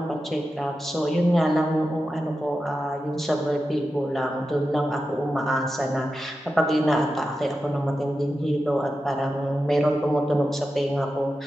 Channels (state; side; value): normal; both; correlation 0.91